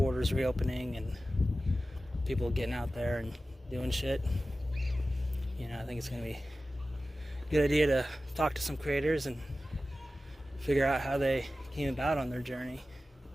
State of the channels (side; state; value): both; normal; correlation 0.95